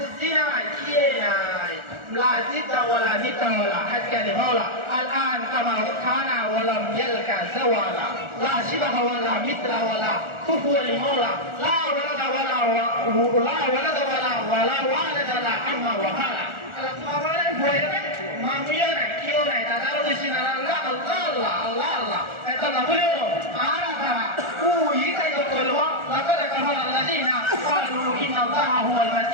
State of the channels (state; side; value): late; left; 1.4 ms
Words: কিয়েনাই লা জিদা ওয়ালা নিতা ওয়ালা হাক্কা লিমাওলা الآن كما كان ولم يلك زوالا لا شبه ولا مثل ولا كفو لمولا لا ولد ولا والد لا عم وهلا মামিও নাই কেউ নাই দাদারও বেশি না আল্লাহ এটা না বলেও আর ও ইতাই বলবো লাকাদ কাফারা আল্লাযীনা ক্বালু ইন্নাল্লাহা হুয়াল